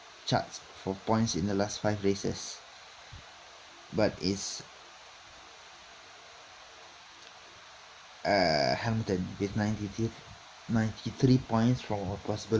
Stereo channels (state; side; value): identical; both; correlation 1.00